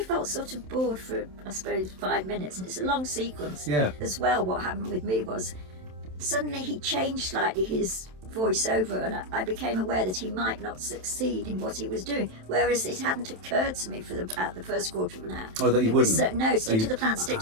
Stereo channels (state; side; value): late; left; 27 ms